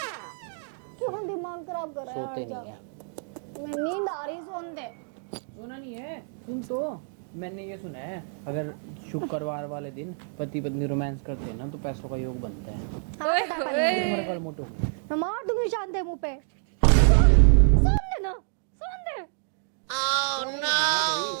क्यों दिमाग खराब कर रहा है? सोते नहीं है। मैं नींद आ रही, सोन दे। सुना नहीं है? सुन तो, मैंने ये सुना है अगर शुक्रवार वाले दिन पति पत्नी रोमांस करते हैं ना तो पैसों का योग बनता है। हाथ हटा पहले। तुम्हारा कल मोटो। मैं मार दूंगी शांत मुंह पे। सोन दे ना, सोन दे। सोने नहीं दूंगा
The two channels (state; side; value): silent; left; 60 dB below the other